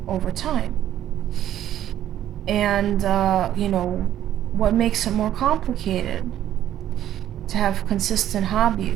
over time. And what makes it more complicated to have consistent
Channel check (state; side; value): quieter; left; 11.7 dB